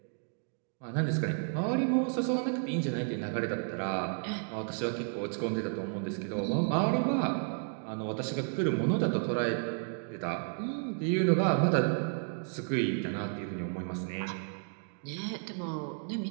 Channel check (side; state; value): left; silent; 56 dB below the other